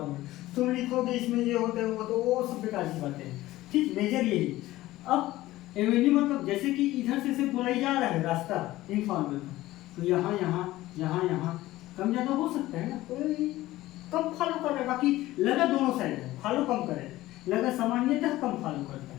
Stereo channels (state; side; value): quieter; right; 16.7 dB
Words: तुम लिखोगे इसमें ये होता है वो सब बेकार की बातें हैं, ठीक। मेजर यही। अब एवेन्यू मतलब जैसे कि इधर से बोलाई जा रहा है रास्ता इन फार्मर का, तो यहाँ कम ज़्यादा हो सकता है ना, कोई कम फॉलो कर रहा है, बाकी लगा दोनों साइड है, फॉलो कम करे, लगा सामान्यतः कम फॉलो करता